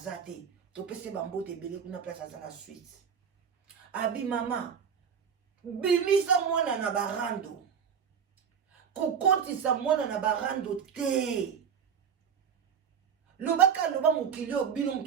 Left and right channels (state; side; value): quieter; left; 7.3 dB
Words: to pese bambote belé kuna place azala suite. Abi mama bimisa mwana na barando. Kokotisa mwana na barando te. Lobaka loba mokili o bino